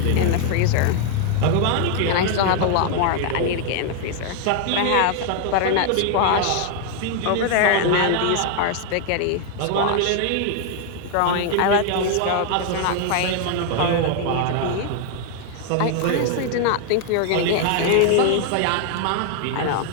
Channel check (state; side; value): different; both; correlation 0.00